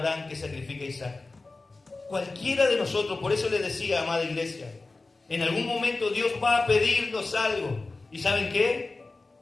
que sacrifique a Isaac. Cualquiera de nosotros, por eso les decía, amada iglesia, en algún momento Dios va a pedirnos algo. ¿Y saben qué?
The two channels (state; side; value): quieter; right; 3.5 dB